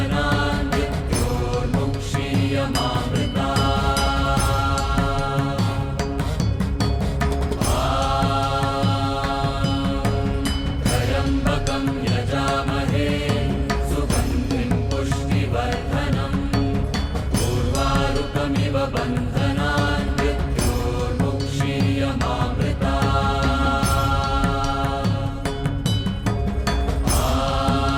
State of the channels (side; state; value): both; identical; correlation 1.00